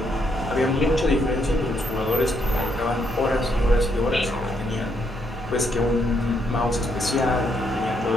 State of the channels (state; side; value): normal; both; correlation 0.75